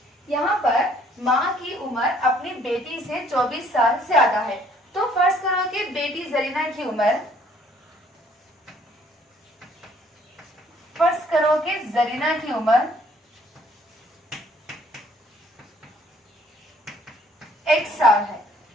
यहाँ पर माँ की उम्र अपनी बेटी से 24 साल ज्यादा है, तो फर्ज करो कि बेटी जरीना की उम्र, फर्ज करो कि जरीना की उम्र एक साल है,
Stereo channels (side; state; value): both; normal; correlation 0.61